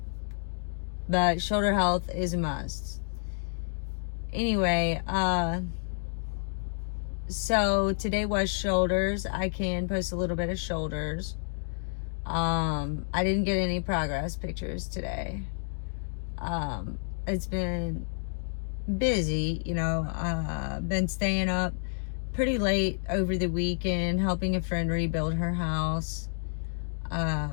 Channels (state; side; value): silent; right; digital silence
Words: but shoulder health is a must. Anyway, so today was shoulders. I can post a little bit of shoulders. I didn't get any progress pictures today. It's been busy, been staying up pretty late over the weekend, helping a friend rebuild her house.